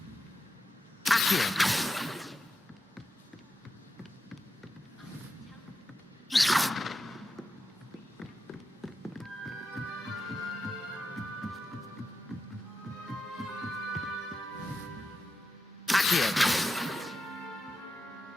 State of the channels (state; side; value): normal; both; correlation 0.88